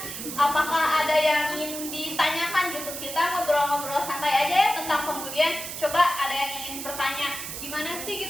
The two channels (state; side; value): noise; right; hiss, 7 dB below the sound